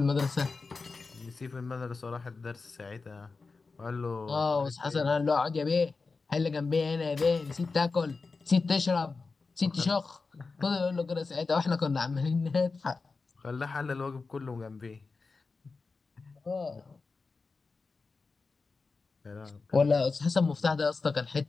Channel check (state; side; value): quieter; right; 4.2 dB